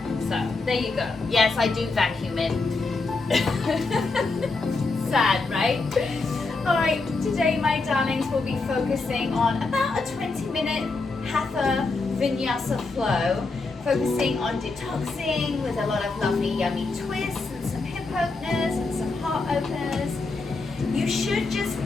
So there you go. Yes, I do vacuum it. Sad, right? Alright, today my darlings will be focusing on about a 20-minute Hatha Vinyasa flow, focusing on detoxing with a lot of lovely yummy twists and some hip openers and some heart openers. You should just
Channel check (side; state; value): right; quieter; 3.8 dB